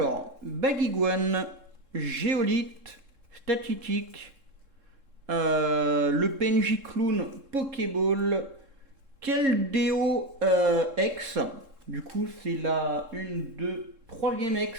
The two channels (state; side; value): late; left; 3.7 ms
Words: Bagiguan, Géolite, Statitique, le PNJ Clown Pokéball, Keldeo X. Du coup, c'est la 1, 2, 3e